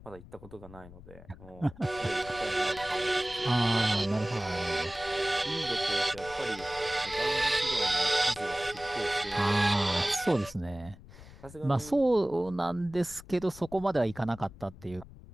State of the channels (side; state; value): left; noise; rumble, 18 dB below the sound